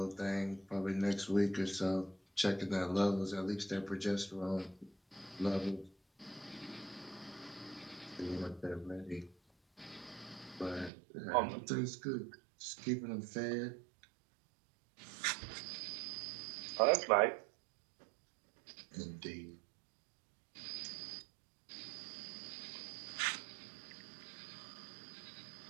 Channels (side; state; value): left; drops out; at 10.9 s